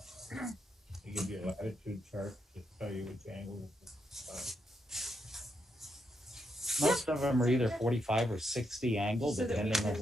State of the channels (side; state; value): both; normal; correlation 0.81